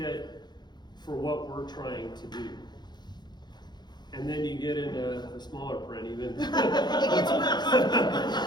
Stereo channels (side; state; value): right; late; 0.21 ms